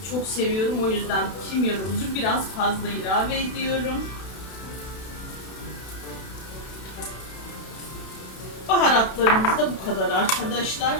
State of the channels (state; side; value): late; right; 32 ms